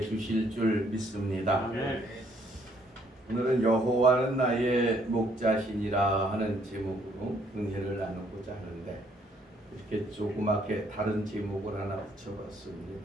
줄 믿습니다. 아멘. 오늘은 여호와는 나의 목자시니라 하는 제목으로 은혜를 나누고자 하는데, 이렇게 조그맣게 다른 제목을 하나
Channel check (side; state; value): both; normal; correlation 0.66